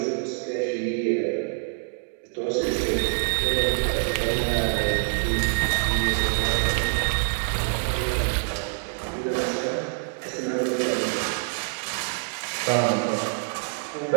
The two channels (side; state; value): left; silent; 61 dB below the other